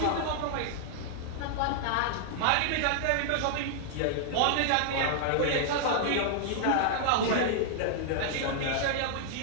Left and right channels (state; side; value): different; both; correlation -0.01